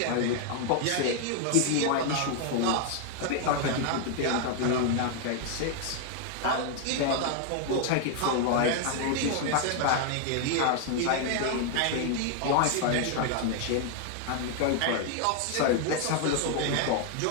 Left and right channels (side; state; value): both; different; correlation 0.00